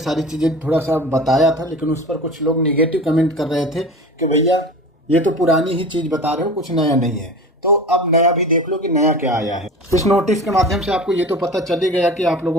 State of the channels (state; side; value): normal; both; correlation 0.34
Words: चीज़ें थोड़ा सा बताया था, लेकिन उस पर कुछ लोग नेगेटिव कमेंट कर रहे थे कि भैया ये तो पुरानी ही चीज़ बता रहे हो, कुछ नया नहीं है। तो अब नया भी देख लो कि नया क्या आया है। इस नोटिस के माध्यम से आपको ये तो पता चल ही गया कि आप